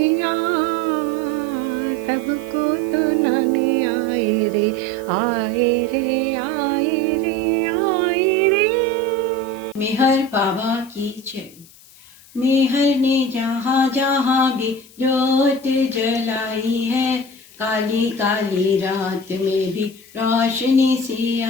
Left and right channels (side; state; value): left; noise; hiss, 23 dB below the sound